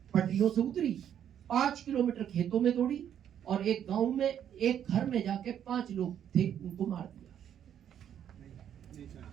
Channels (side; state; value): left; quieter; 9.6 dB